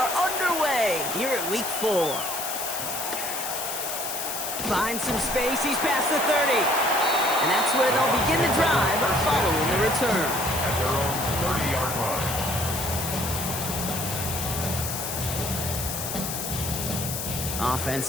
underway here at Week 4. Finds some space. He's past the 30. And that's where they'll begin the drive following the return. At their own 30-yard line.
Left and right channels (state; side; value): noise; left; hiss, 4 dB below the sound